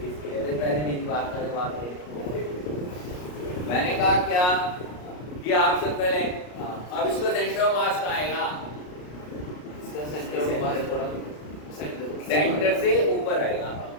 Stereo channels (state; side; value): late; right; 33 ms